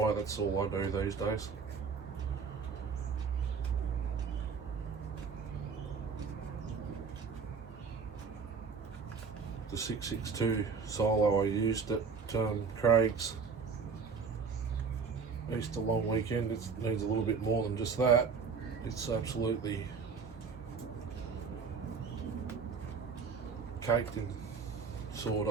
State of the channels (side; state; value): left; quieter; 5.5 dB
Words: That's all I do these days. The 662 solo I used at Craig's Easter long weekend, it needs a little bit more than just that. It's absolutely caked in